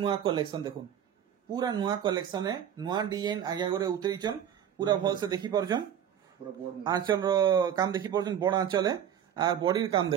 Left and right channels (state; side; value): quieter; left; 9.4 dB